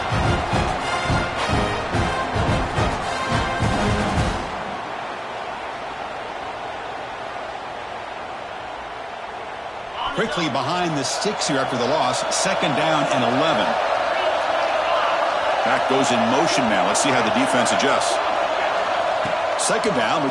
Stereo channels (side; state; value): both; identical; correlation 1.00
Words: Quickly behind the sticks here after the loss. Second down and 11. Back goes in motion now. Let's see how the defense adjusts. Second down, we're